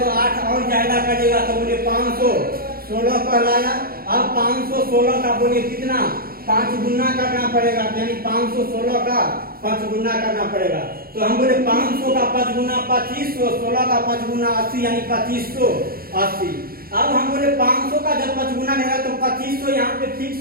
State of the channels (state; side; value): late; left; 0.43 ms